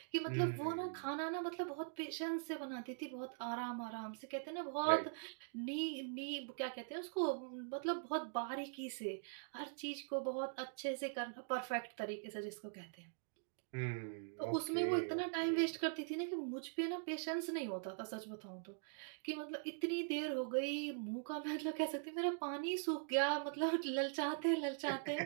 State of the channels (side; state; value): left; silent; digital silence